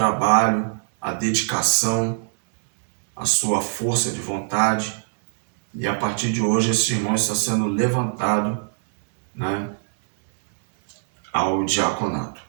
a dedicação, a sua força de vontade, e a partir de hoje esse irmão está sendo levantado, né, ao diaconato.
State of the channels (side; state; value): left; silent; digital silence